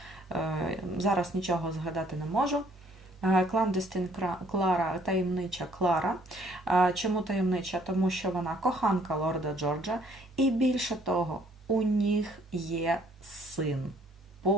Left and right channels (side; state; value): both; normal; correlation 0.62